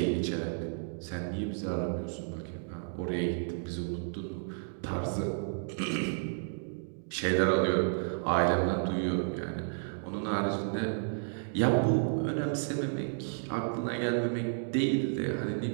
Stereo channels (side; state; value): left; silent; digital silence